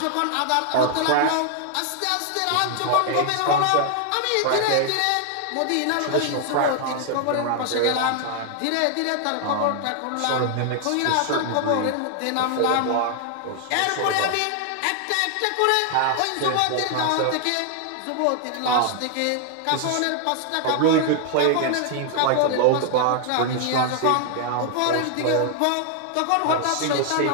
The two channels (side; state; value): both; different; correlation 0.00